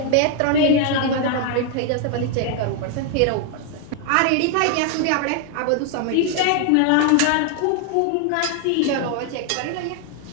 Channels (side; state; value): both; different; correlation 0.00